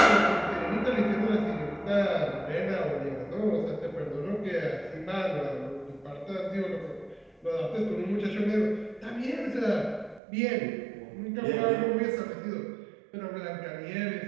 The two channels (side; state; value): left; drops out; at 10.2 s